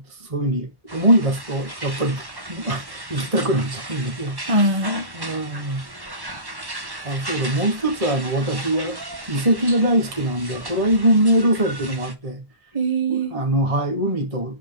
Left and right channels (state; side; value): late; left; 1.1 ms